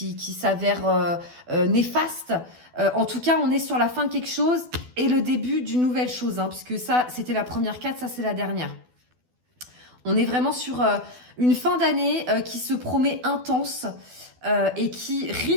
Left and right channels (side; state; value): left; late; 12 ms